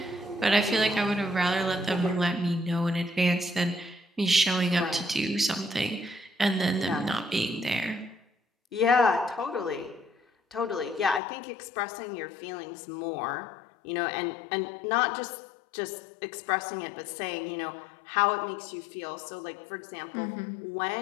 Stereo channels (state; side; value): drops out; right; at 11.2 s